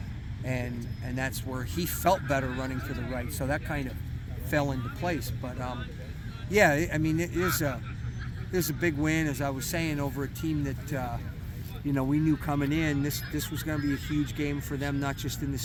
and that's where he felt better running to the right. So that kind of fell into place. But yeah, I mean, it is a big win, as I was saying, over a team that we knew coming in this was going to be a huge game for them, not just in the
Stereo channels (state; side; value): identical; both; correlation 1.00